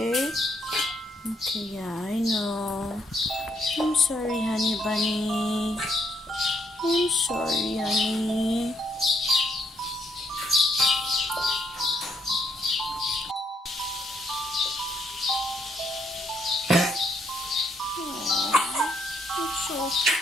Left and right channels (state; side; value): normal; both; correlation 0.72